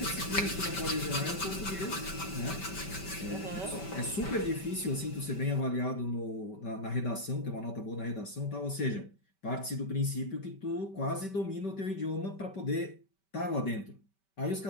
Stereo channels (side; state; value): right; late; 5.2 ms